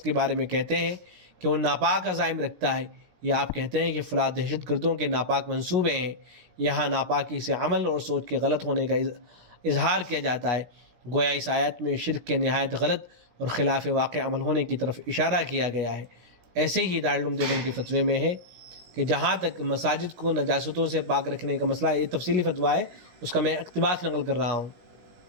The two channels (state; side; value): late; left; 17 ms